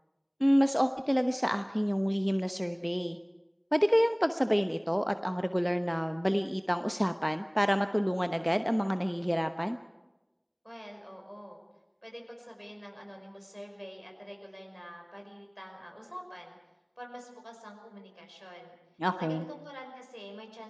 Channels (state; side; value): identical; both; correlation 1.00